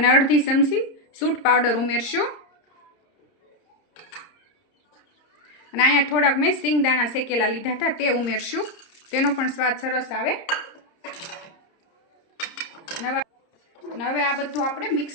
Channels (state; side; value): late; right; 30 ms